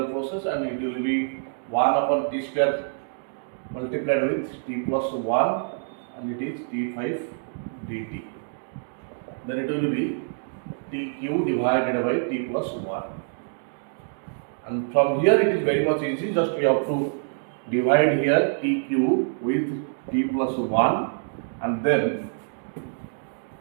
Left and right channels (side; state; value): left; silent; digital silence